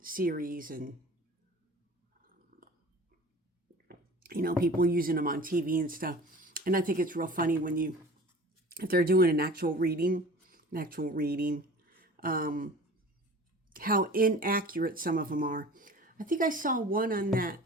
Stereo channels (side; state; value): both; normal; correlation 0.41